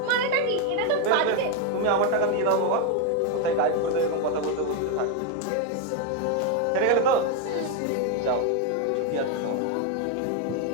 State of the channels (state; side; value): different; both; correlation 0.01